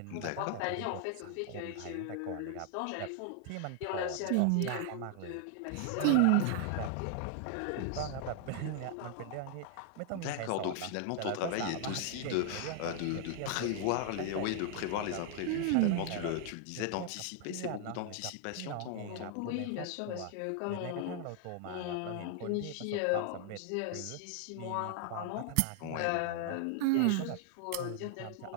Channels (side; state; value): both; different; correlation 0.00